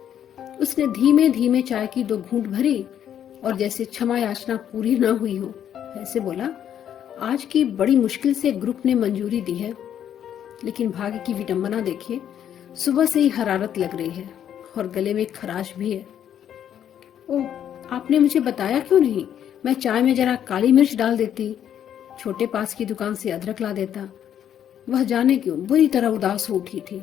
उसने धीमे धीमे चाय की 2 घूंट भरी और जैसे क्षमा याचना पूरी न हुई हो ऐसे बोला, आज की बड़ी मुश्किल से ग्रुप ने मंजूरी दी है, लेकिन भाग्य की विडंबना देखिए, सुबह से ही हरारत लग रही है और गले में खराश भी है। ओह, आपने मुझे बताया क्यों नहीं? मैं चाय में जरा काली मिर्च डाल देती, छोटे पास की दुकान से अदरक ला देता। वह जाने क्यों बुरी तरह उदास हो उठी थी।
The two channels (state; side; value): quieter; right; 9.8 dB